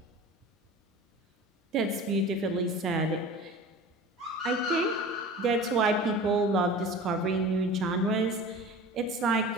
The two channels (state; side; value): normal; both; correlation 0.38